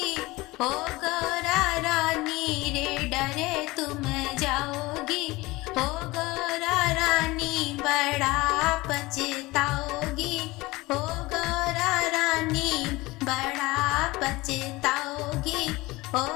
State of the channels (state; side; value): quieter; right; 21.2 dB